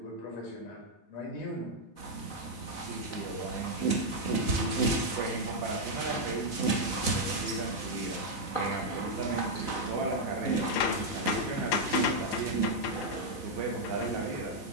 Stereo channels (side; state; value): right; late; 4.0 ms